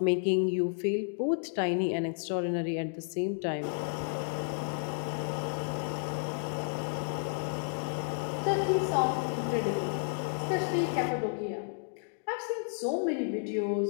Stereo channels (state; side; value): silent; right; digital silence